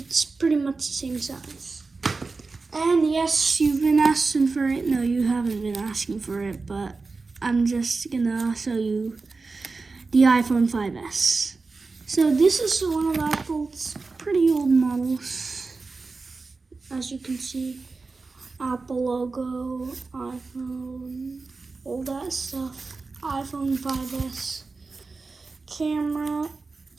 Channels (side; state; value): left; quieter; 4.0 dB